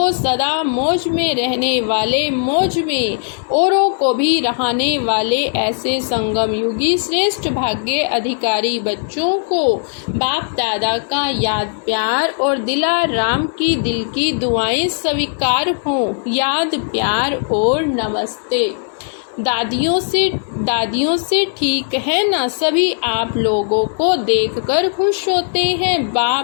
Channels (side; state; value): right; silent; digital silence